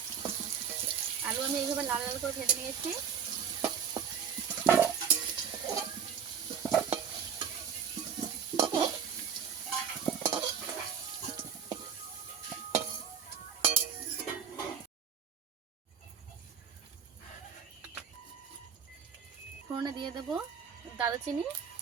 আলু আমি এইভাবে লাল লাল করে ভেজে নিয়েছি। ফোড়নে দিয়ে দেবো দারুচিনি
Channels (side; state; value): left; quieter; 7.5 dB